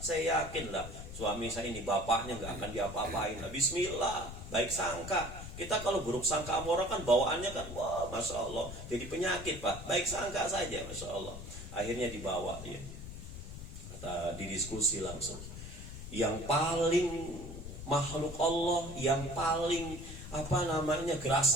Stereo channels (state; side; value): noise; left; rumble, 10 dB below the sound